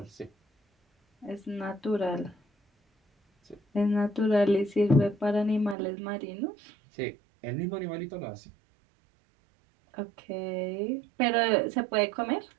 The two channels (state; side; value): drops out; left; at 5.8 s